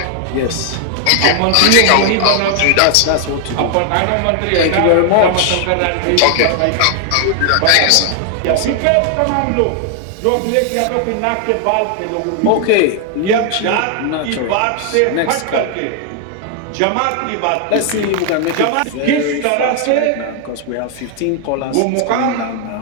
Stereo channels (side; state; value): both; different; correlation 0.00